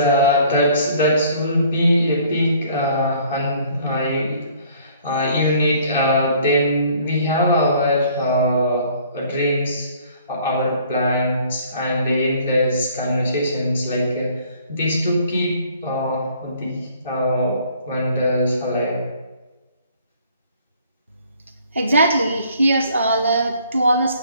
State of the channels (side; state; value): both; inverted; correlation -0.57